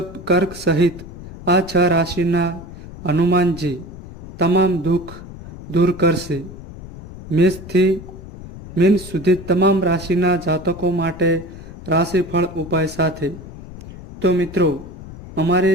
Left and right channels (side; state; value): left; noise; rumble, 14 dB below the sound